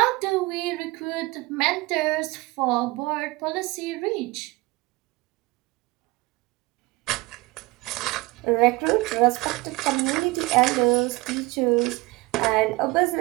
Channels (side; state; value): left; quieter; 22.1 dB